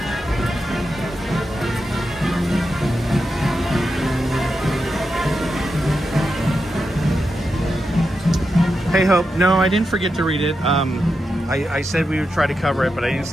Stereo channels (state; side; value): normal; both; correlation 0.88